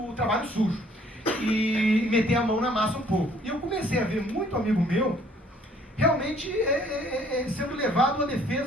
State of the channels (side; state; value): both; normal; correlation 0.60